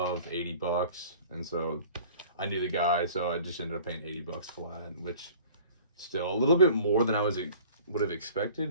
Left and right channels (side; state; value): both; inverted; correlation -0.47